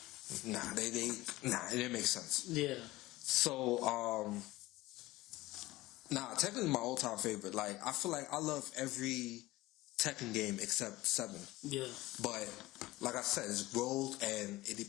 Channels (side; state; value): right; quieter; 18.7 dB